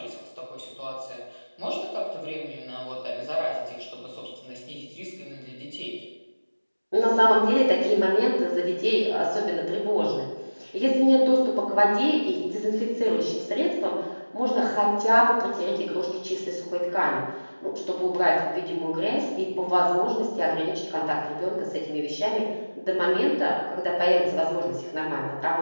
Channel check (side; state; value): both; inverted; correlation -1.00